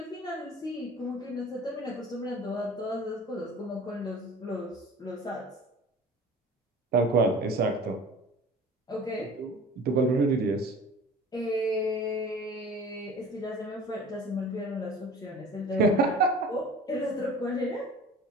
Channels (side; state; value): both; normal; correlation 0.43